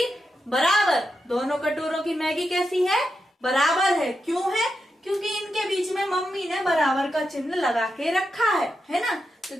बराबर। दोनों कटोरों की मैगी कैसी है, बराबर है। क्यों है, क्योंकि इनके बीच में मम्मी ने बराबर का चिन्ह लगा के रखा है ना। तो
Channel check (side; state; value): both; normal; correlation 0.86